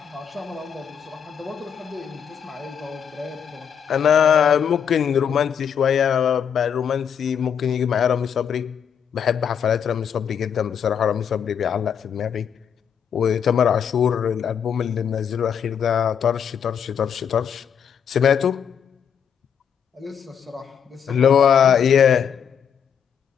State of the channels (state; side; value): quieter; right; 7.8 dB